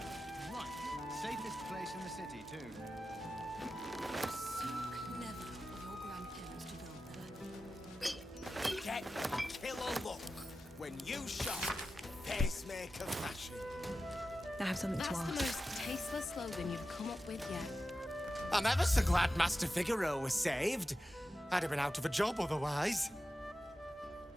Right. Safest place in the city, too. So clever of your grandparents to build that. Get killer look when you shop pacemaker fashion. I have something to That's ask. the most tasteless slogan you've come up with yet. I'm ever so glad Master Figaro was saved. I'd have been out of a job otherwise.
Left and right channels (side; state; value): both; normal; correlation 0.92